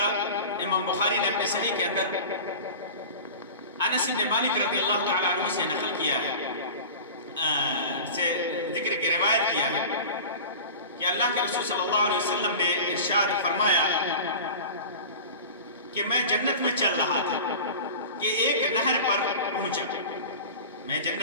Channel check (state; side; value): inverted; both; correlation -0.34